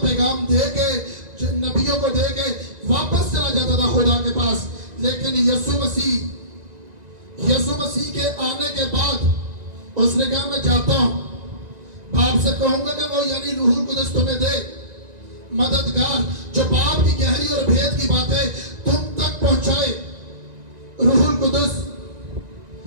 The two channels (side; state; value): left; late; 1.9 ms